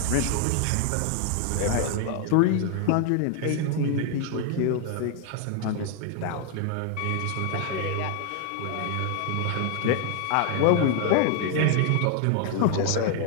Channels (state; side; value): different; both; correlation 0.00